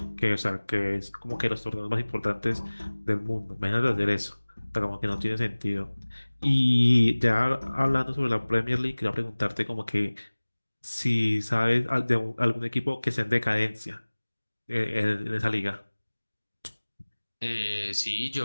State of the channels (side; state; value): both; inverted; correlation -1.00